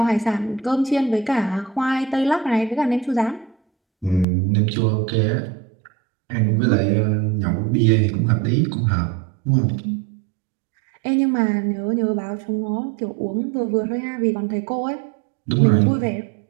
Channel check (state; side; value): drops out; left; at 4.2 s